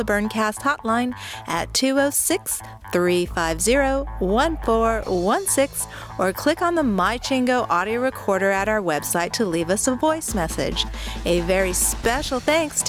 Burncast hotline at 206-350-1416 or click on the MyChingo audio recorder at our website to leave us a voice message. A very special thanks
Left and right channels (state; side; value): identical; both; correlation 1.00